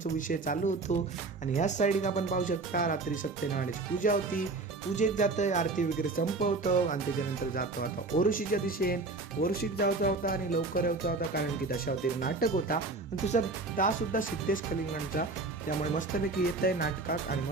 विषय चालू होतो. आणि ह्याच साईड आपण पाहू शकता रात्री सत्यनारायणाची पूजा होती. पूजेक जातंय, आरती वगैरे संपवतो आणि त्याच्यानंतर जातो आता ओरुशीच्या दिशेन. ओरुशीक जायचा होता आणि लवकर यायचा होता, कारण की दशावतारी नाटक होता आणि दुसरा तासुद्धा सिद्धेश कलिंगणचा. त्यामुळे मस्तपैकी येत आहे नाटकाक आणि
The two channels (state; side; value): quieter; left; 3.5 dB